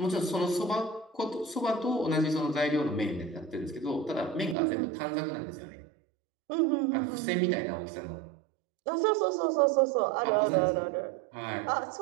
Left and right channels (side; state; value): left; drops out; at 4.5 s